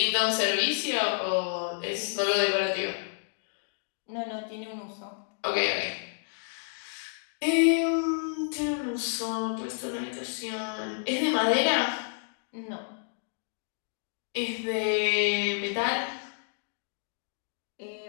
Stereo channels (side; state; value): right; silent; digital silence